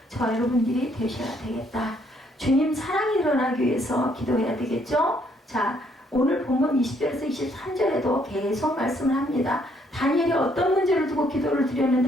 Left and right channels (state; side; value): normal; both; correlation 0.68